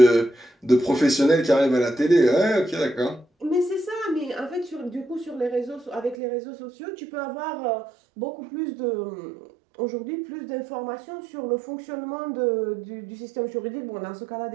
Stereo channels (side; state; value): left; drops out; at 6.2 s